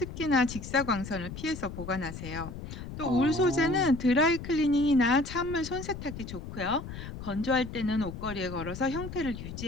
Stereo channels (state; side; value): noise; left; rumble, 10 dB below the sound